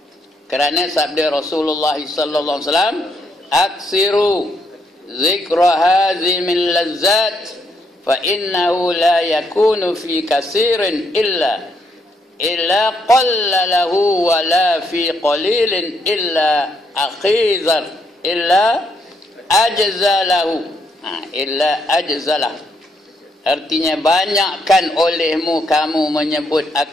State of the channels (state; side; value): normal; both; correlation 0.75